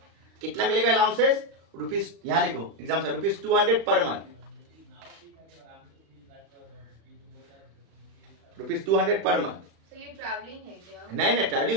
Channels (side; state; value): left; late; 36 ms